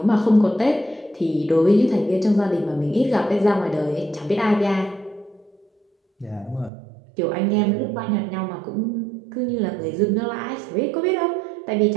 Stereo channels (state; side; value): drops out; left; at 6.7 s